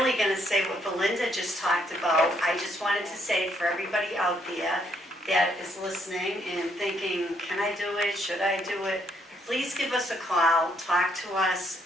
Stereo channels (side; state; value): both; normal; correlation 0.71